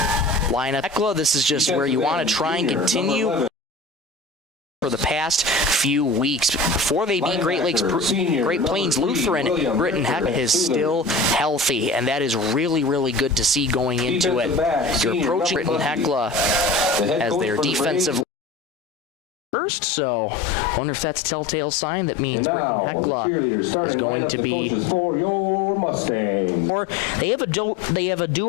this is just where you want to try and continue for the past few weeks. Before they beat Great Plains Lutheran, Britton-Hecla is still healthy, and that is really, really good to see going into it. You're approaching Britton-Hecla as their defensive first, so I wonder if that's a telltale sign that means Britton-Hecla is going to be. Or they have a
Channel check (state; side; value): drops out; right; at 18.2 s